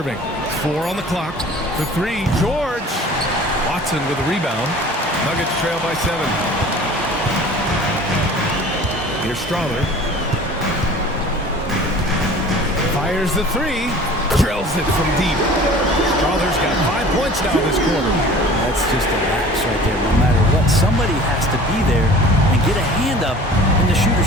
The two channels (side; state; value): both; normal; correlation 0.44